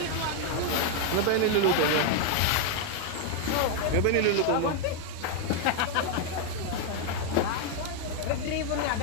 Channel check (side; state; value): both; different; correlation 0.00